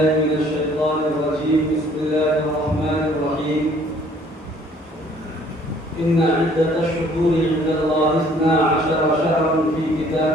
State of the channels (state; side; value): normal; both; correlation 0.58